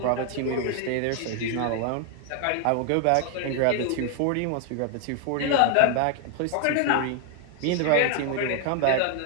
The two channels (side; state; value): both; different; correlation 0.00